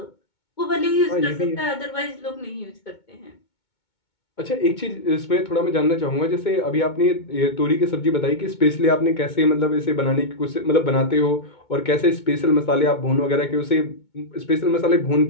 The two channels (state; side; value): late; right; 2.2 ms